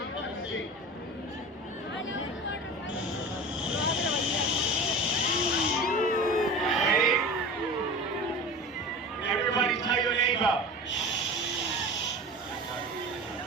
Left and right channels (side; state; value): both; normal; correlation 0.33